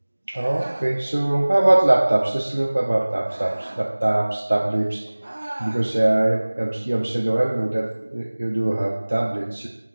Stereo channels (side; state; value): both; inverted; correlation -1.00